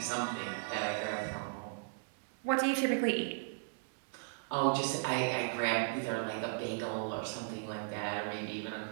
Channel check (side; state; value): left; silent; 53 dB below the other